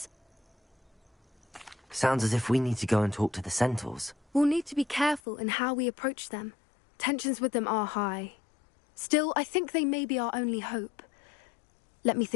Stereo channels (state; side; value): drops out; right; at 5.2 s